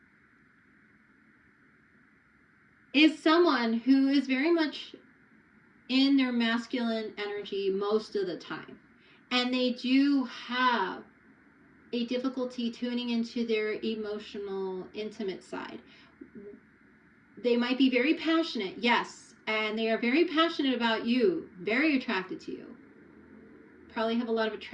is someone who is very much in their masculine energy most of the time. And they do have a difficulty tuning into their emotional, intimate side. They might be very passionate, yes, and they are very passionate about you, very attracted to you. Probably have a lot of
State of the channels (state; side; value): identical; both; correlation 1.00